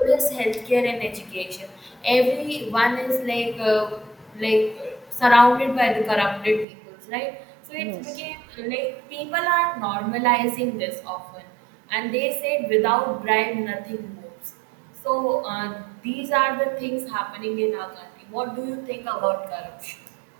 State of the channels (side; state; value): left; drops out; at 6.7 s